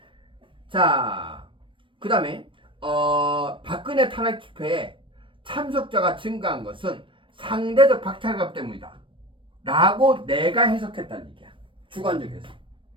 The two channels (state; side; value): late; left; 0.25 ms